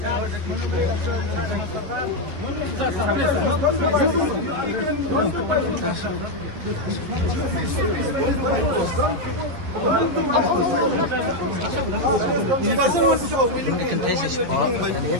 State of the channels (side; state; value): left; late; 11 ms